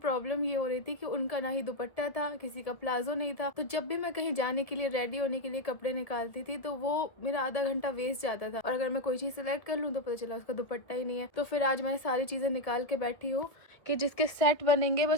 ये हो रही थी कि उनका ना ही दुपट्टा था, किसी का प्लाजो नहीं था। तो जब भी मैं कहीं जाने के लिए रेडी होने के लिए कपड़े निकालती थी तो वो मेरा आधा घंटा वेस्ट जाता था, और अगर मैं कोई चीज सिलेक्ट कर लूँ तो पता चला उसका दुपट्टा ही नहीं है। तो फिर आज मैं सारी चीजें निकाल के बैठी हूँ कि जिसके सेट बनेंगे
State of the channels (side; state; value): right; late; 1.3 ms